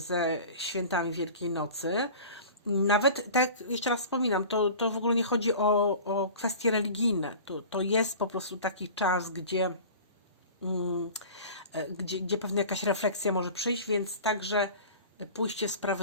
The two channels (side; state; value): both; inverted; correlation -0.39